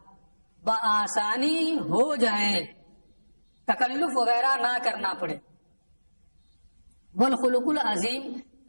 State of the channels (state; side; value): inverted; both; correlation -1.00